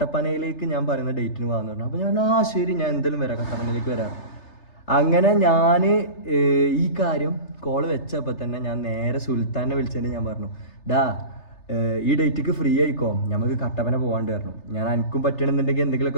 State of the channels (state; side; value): late; right; 3.3 ms